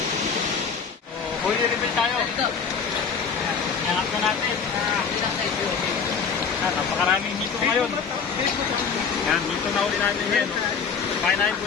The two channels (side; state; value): right; quieter; 6.2 dB